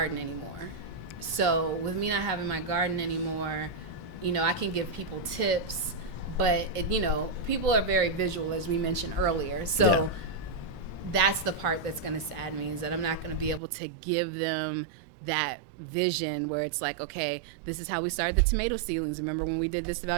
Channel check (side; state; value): left; drops out; at 13.6 s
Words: anymore. So with me not having my garden anymore, you know, I can give people tips, but, you know, people are very visual, as we mentioned earlier. So that's the part that's going to sadden me, is that I'm not going to be able to give them that vision where it's like, okay, this is how we started the tomato seedlings. Remember when we did this